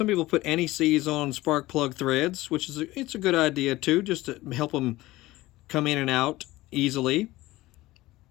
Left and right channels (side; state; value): right; quieter; 18.2 dB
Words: people put anti-seize on spark plug threads, which is it's a good idea too, just to help them come in and out easily.